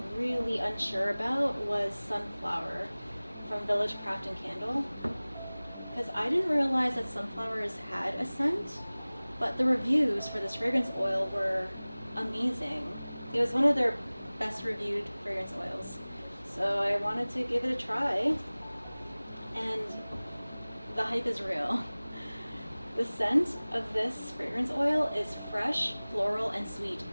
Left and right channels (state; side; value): inverted; both; correlation -0.99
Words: really unsure about was sunflower from Village Craft and Candle, because I didn't realize that sunflowers had a scent, But the reviews for this fragrance oil were amazing. It was one of their best reviewed fragrance oils. So I wanted to give it a try, and the hype is real. The scent of this fragrance oil is fresh, floral, and sweet